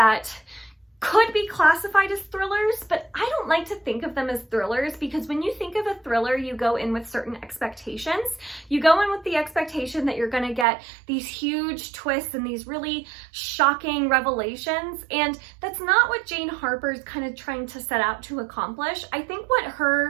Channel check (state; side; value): drops out; left; at 10.7 s